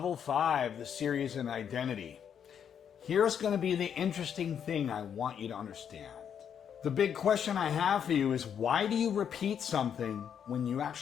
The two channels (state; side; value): quieter; right; 8.2 dB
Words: 5, the series in identity. Here's going to be the interesting thing I want you to understand. The big question I have for you is, why do you repeat something when you